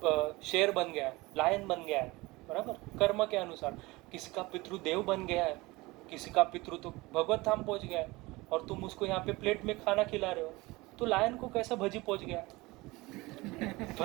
शेर बन गया है, लायन बन गया है, बराबर, कर्म के अनुसार। किसी का पितृ देव बन गया है, किसी का पितृ तो भगवत धाम पहुंच गया है, और तुम उसको यहाँ पे प्लेट में खाना खिला रहे हो, तो लायन को कैसा भजी पहुंच गया?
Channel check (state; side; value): quieter; left; 21.9 dB